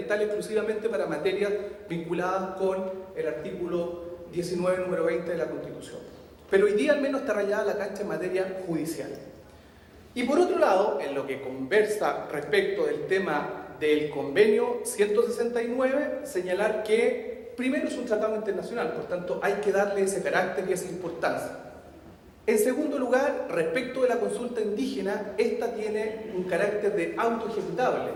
exclusivamente para materias vinculadas con el artículo 19, número 20 de la Constitución. Pero hoy día al menos está rayada la cancha en materia judicial. Y por otro lado, en lo que conversa respecto del tema del convenio 169, señalar que primero es un tratado internacional, por tanto hay que darle ese carácter y esa importancia. En segundo lugar, respecto de la consulta indígena, esta tiene un carácter de autoejecutable,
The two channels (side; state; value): both; identical; correlation 1.00